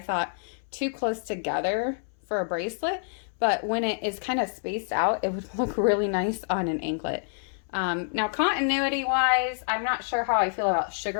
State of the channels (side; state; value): right; silent; 60 dB below the other